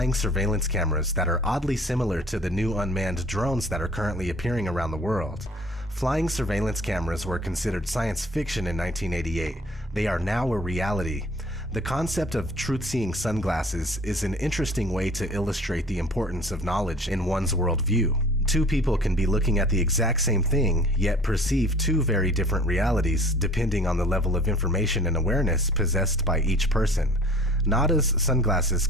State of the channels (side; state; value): both; normal; correlation 0.48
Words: surveillance cameras that are oddly similar to the new unmanned drones that are currently appearing around the world. Flying surveillance cameras were considered science fiction in 1988. They are now a reality. The concept of truth-seeing sunglasses is an interesting way to illustrate the importance of knowledge in one's worldview. Two people can be looking at the exact same thing, yet perceive two very different realities depending on the level of information and awareness possessed by each person. Nada's sunglasses